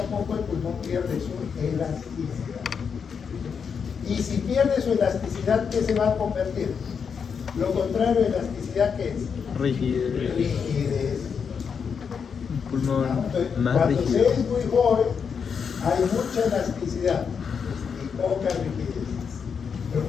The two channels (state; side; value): quieter; right; 6.4 dB